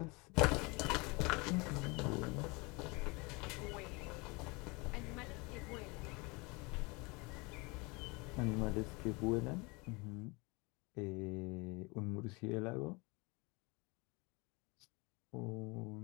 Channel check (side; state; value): right; quieter; 27.2 dB